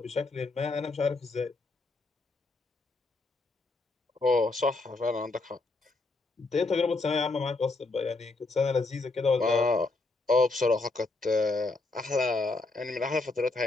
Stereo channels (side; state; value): right; quieter; 3.4 dB